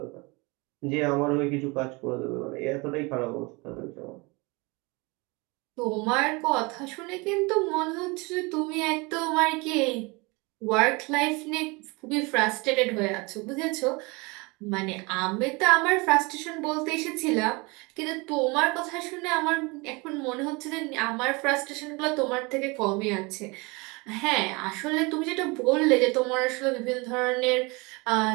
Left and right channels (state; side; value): quieter; left; 26.7 dB